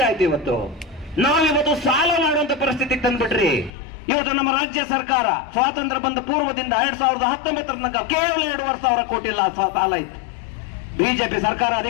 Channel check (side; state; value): right; drops out; at 3.7 s